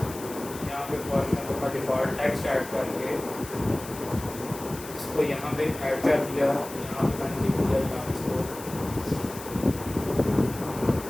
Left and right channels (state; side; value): noise; left; hiss, 14 dB below the sound